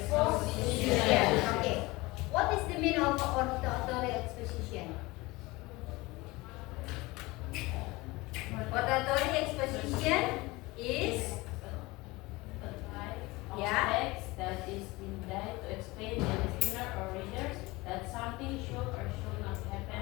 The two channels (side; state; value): right; quieter; 22.0 dB